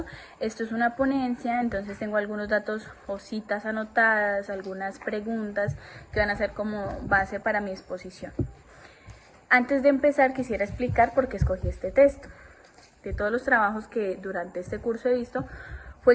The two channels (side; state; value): both; identical; correlation 1.00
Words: Esto es una ponencia, entonces tengo algunos datos o citas anotadas, algunas preguntas que van a ser como base para mi exposición. Antes de empezar quisiera explicar por qué escogí este texto. De todos los trabajos que durante este curso he visto,